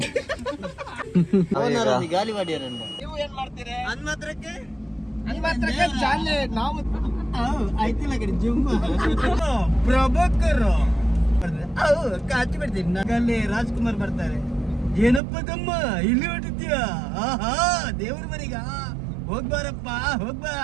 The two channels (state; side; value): drops out; left; at 15.2 s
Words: ಗಾಲಿವಾಡಿಯರನ್ನು ನೀವು ಏನ್ ಮಾಡ್ತೀರಿ? ಹನ್ಮತ್ರಕ್ಕೆ ಜಾಲೆ ನಾವು ಆಯ್ತಿಲ್ಲ ಕಡೆ ಜುಮ್ಮ ಪ್ರಭಾಕರ್ ಕಾಚಿ ಬಿಡ್ತೀನಿ ಅಲ್ಲಿ ರಾಜ್ಕುಮಾರ್ ಬರ್ತಾರೆ. ಏನಪ್ಪ ತಮ್ಮ ಇಲ್ಲಿ ಹೊಟ್ಟಿದ್ಯಾ? ಆಹಾ ದೇವ್ರ ಮನೆಗ ಹೋಗ್ಬಾರಪ್ಪ ಹೋಗ್ಬಾ.